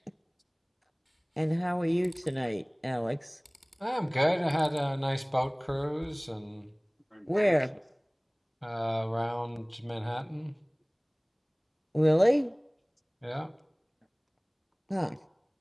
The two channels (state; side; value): identical; both; correlation 1.00